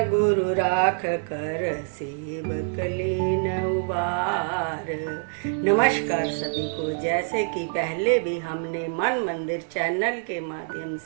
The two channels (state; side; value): silent; left; digital silence